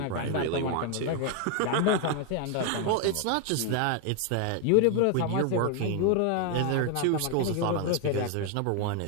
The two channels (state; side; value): different; both; correlation 0.01